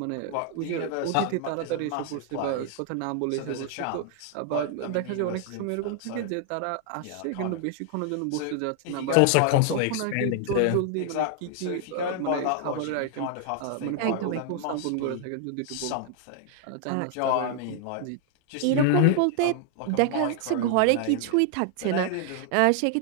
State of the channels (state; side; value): different; both; correlation 0.00